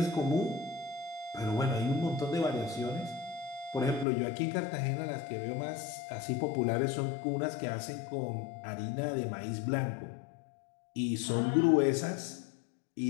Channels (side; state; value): right; drops out; at 4.0 s